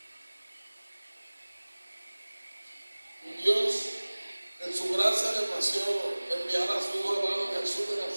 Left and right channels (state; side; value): inverted; both; correlation -1.00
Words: Un Dios en su gracia le plació enviar a su Hijo amado Jesús de